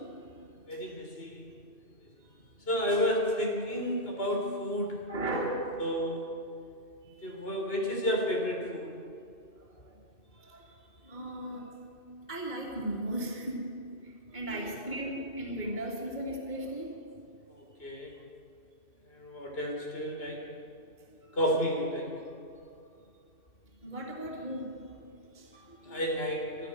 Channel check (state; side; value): late; right; 2.6 ms